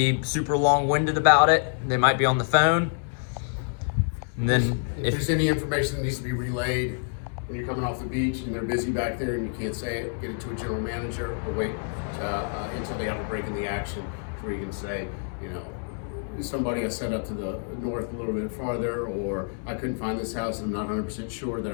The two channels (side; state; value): right; silent; 59 dB below the other